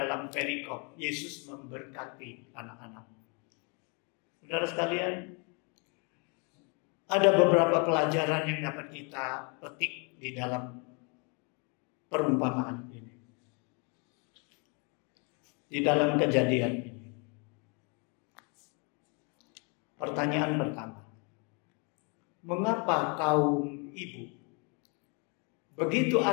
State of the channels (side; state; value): right; quieter; 34.3 dB